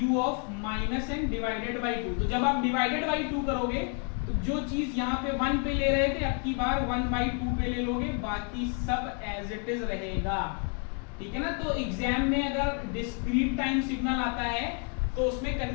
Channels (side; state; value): right; quieter; 38.8 dB